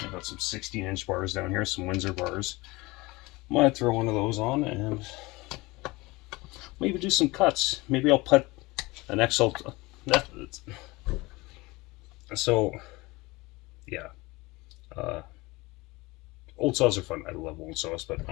got some 16-inch bars down here, some Windsor bars. Might throw one of those on and maybe do some cuts. Maybe I'll put an XL. So, yeah. Old saws are fun. I love old saws, but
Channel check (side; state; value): right; quieter; 22.6 dB